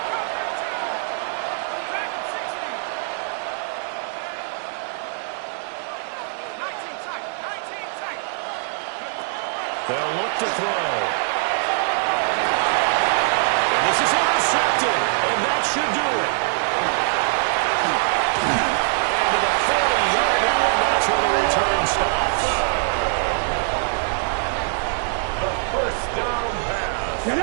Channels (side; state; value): left; silent; digital silence